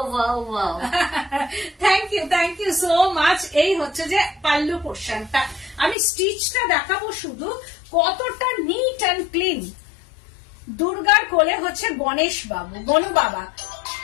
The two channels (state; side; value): drops out; right; at 6.0 s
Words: থ্যাংক ইউ সো মাচ। এই হচ্ছে যে পাল্লু পোর্শনটা, আমি স্টিচটা দেখাবো শুধু, কতটা নিট অ্যান্ড ক্লিন। দুর্গার কোলে হচ্ছে গণেশ বাবু, গনু বাবা,